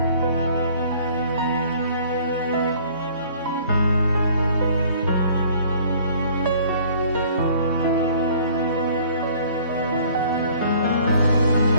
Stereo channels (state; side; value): inverted; both; correlation -0.54